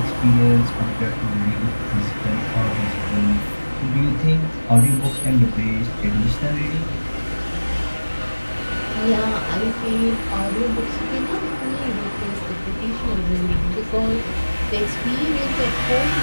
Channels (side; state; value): both; inverted; correlation -1.00